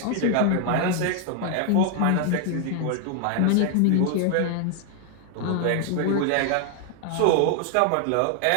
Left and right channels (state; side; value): different; both; correlation 0.00